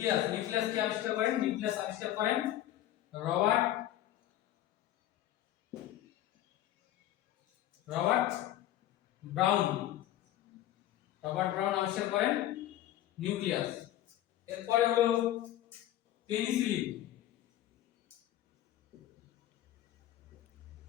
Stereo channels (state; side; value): quieter; right; 13.2 dB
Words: নিউক্লিয়াস কে আবিষ্কার করেন? নিউক্লিয়াস আবিষ্কার করেন রবার্ট ব্রাউন, রবার্ট ব্রাউন আবিষ্কার করেন নিউক্লিয়াস। এরপরে হলো পেনিসিলিন,